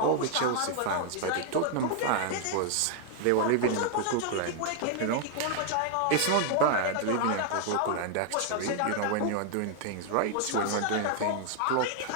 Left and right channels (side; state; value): both; different; correlation 0.00